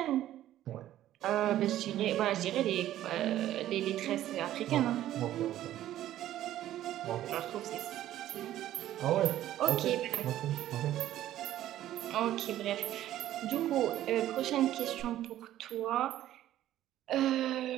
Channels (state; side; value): quieter; left; 13.0 dB